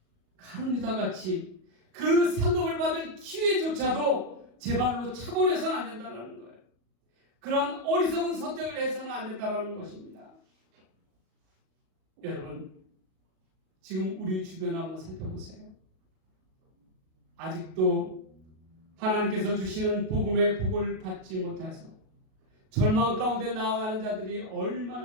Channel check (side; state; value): left; late; 37 ms